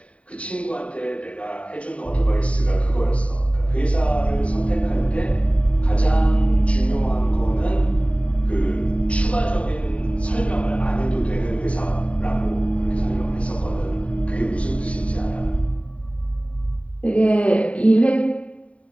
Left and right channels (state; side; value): late; right; 0.064 ms